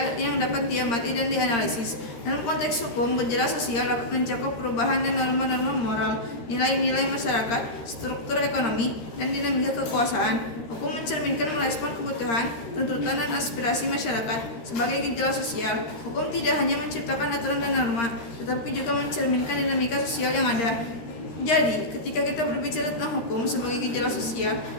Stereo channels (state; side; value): late; right; 13 ms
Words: yang dapat diamati dan dianalisis. Dalam konteks hukum, gejala sosial dapat mencakup perubahan dan norma-norma moral, nilai-nilai masyarakat, struktur ekonomi, dan dinamika kekuasaan. Hukum mencerminkan merespon kebutuhan, tuntutan, dan aspirasi masyarakat. Sebagai gejala sosial, hukum tidak hanya menciptakan aturan dan norma, tetapi juga mencerminkan dinamika sosial yang ada. Jadi, ketika kita berbicara tentang hukum sebagai gejala sosial,